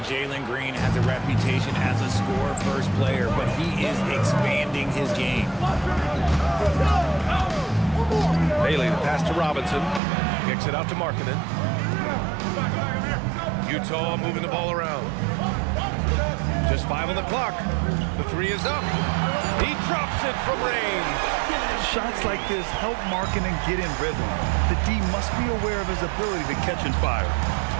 Jalen Green has a reputation as a score-first player, but he is expanding his game. Bailey, the pass to Robinson. Kicks it out to Markkanen. Utah moving the ball around. Just 5 on the clock. The 3 is up. He drops it from range. Shots like this help Markkanen get in rhythm. The D must be aware of his ability to catch and fire.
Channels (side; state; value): left; drops out; at 10.0 s